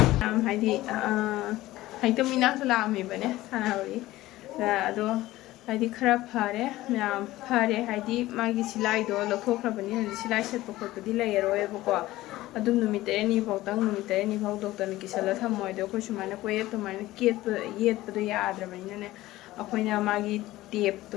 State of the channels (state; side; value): quieter; right; 16.9 dB